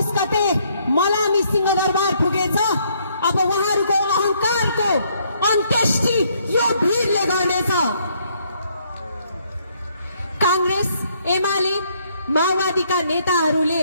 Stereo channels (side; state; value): both; inverted; correlation -0.69